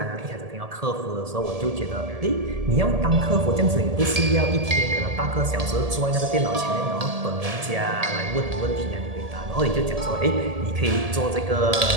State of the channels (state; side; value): late; left; 1.7 ms